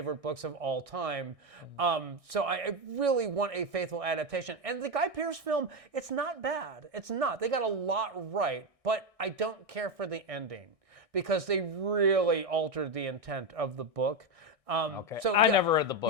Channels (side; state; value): left; late; 1.6 ms